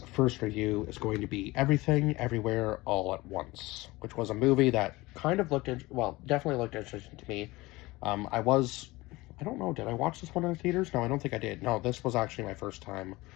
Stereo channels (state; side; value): quieter; right; 20.9 dB